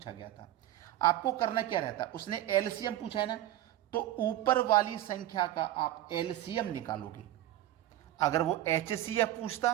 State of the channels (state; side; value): quieter; left; 13.8 dB